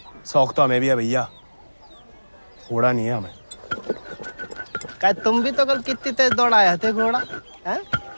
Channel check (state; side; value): inverted; both; correlation -1.00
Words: शौक तो हमें भी है भैया, घोड़ा नहीं है हमें। क्या तुम भी तो कल कितनी तेज दौड़ाए थे घोड़ा? हैं?